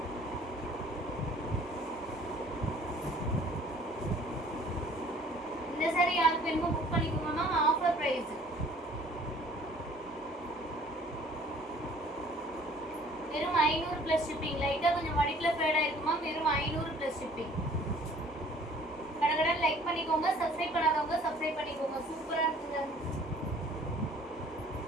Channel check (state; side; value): normal; both; correlation 0.54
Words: இந்த சாரி யாருக்கு வேணுமோ புக் பண்ணிக்கோங்க மேம். Offer price. வெறும் 500 ப்ளஸ் ஷிப்பிங். லைட்டாக கொஞ்சம் மடிப்பில் ஃபேடாக இருக்குமா. வெறும் 500 ப்ளஸ் ஷிப்பிங். கடகடன் லைக் பண்ணிக்கோங்க. சப்ஸ்கிரைப் பண்ணாதவங்க சப்ஸ்கிரைப் பண்ணிக்கோங்க. சூப்பராக இருக்குங்க.